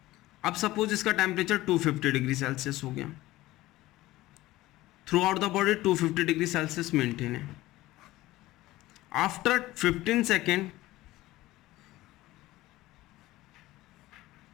अब सपोज इसका टेम्परेचर 250 डिग्री सेल्सियस हो गया, through out the body 250 degree Celsius maintain है। आफ्टर 15 सेकेंड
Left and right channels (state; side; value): quieter; right; 17.4 dB